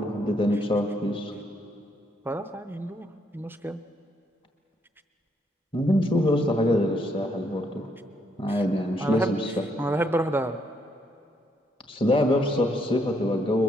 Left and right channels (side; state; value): both; normal; correlation 0.73